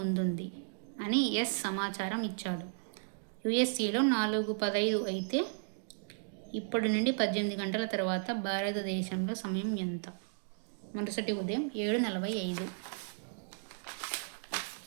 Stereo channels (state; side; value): silent; left; digital silence